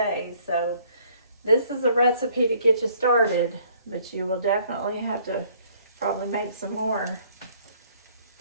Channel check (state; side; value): inverted; both; correlation -0.61